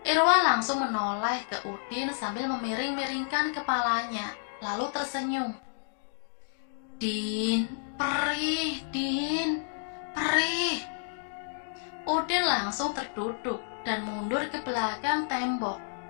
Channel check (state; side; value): silent; right; digital silence